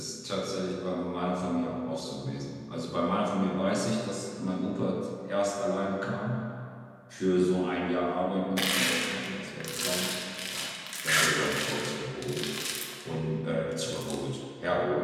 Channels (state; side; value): identical; both; correlation 1.00